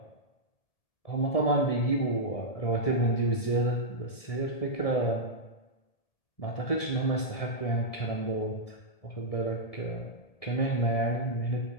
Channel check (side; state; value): right; late; 1.7 ms